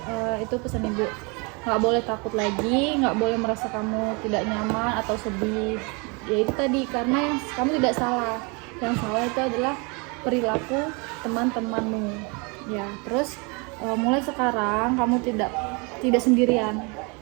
itu pesan ibu, nggak boleh takut lagi, nggak boleh merasa kamu tidak nyaman atau sedih. Ya itu tadi, karena yang kamu tidak salah, yang salah itu adalah perilaku teman-temanmu, ya. Terus mulai sekarang kamu tidak sendirian,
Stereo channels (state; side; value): quieter; left; 30.9 dB